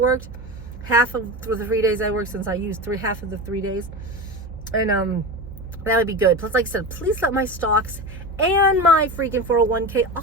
half of the 3 days I worked, since I used half of the 3 days, and that would be good. Plus, like I said, please let my stocks and my freaking 401k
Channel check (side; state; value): both; normal; correlation 0.25